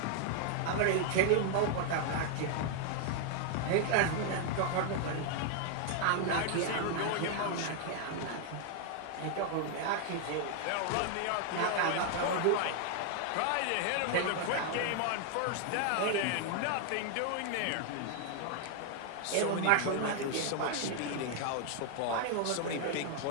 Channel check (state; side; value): different; both; correlation 0.00